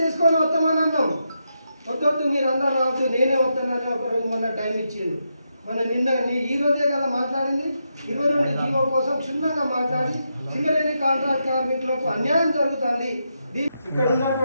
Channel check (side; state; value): both; inverted; correlation -0.83